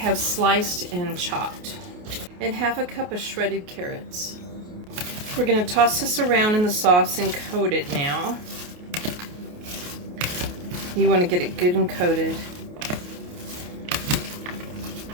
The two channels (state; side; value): late; left; 28 ms